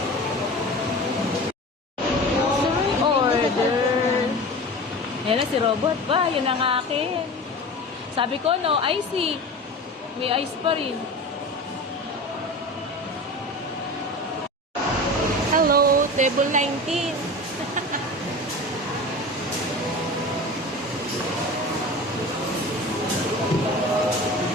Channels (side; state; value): both; normal; correlation 0.33